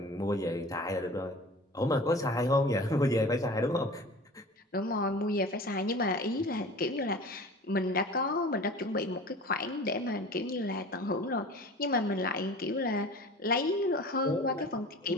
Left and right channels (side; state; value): both; normal; correlation 0.39